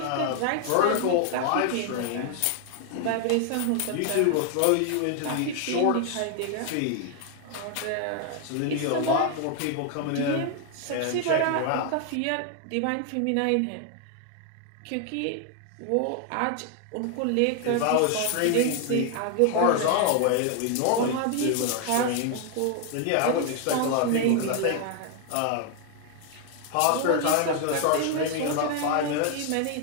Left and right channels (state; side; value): different; both; correlation 0.00